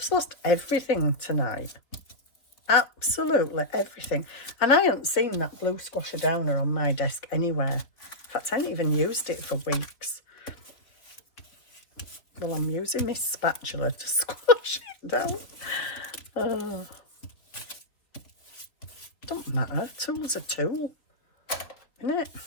lost everything tonight. Absolutely everything. And I haven't seen that blue squasher downer on my desk anywhere. In fact, I haven't even used it for weeks. Well, I'm using my spatula to squash it down. Oh. Don't matter. A tool's a tool, isn't it?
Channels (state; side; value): late; right; 3.4 ms